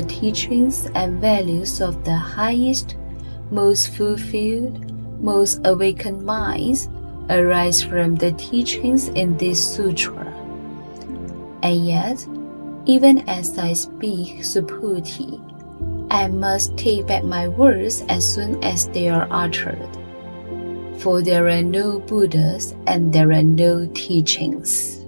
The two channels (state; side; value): inverted; both; correlation -1.00